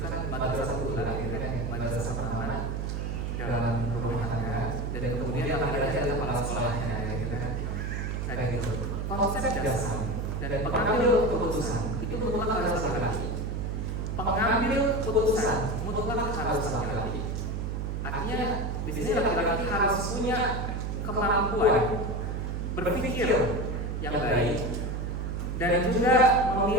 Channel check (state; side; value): noise; right; hum, 2 dB below the sound